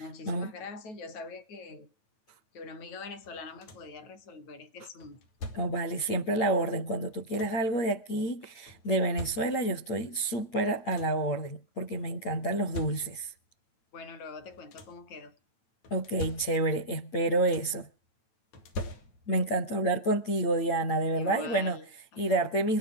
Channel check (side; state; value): right; late; 9.0 ms